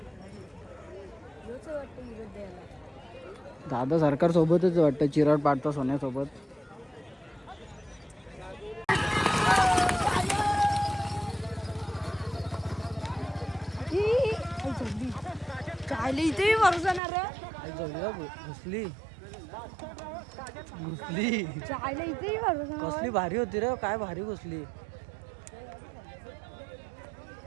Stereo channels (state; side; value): drops out; left; at 17.0 s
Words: दादा सरकार सोबतच वाटतं. चिराड पाडता सोन्यासोबत. इथे भरोसा ना रे. घुसली घुसली. इथे भरोसा. कसली भारी होती रे. काय भारी घुसली.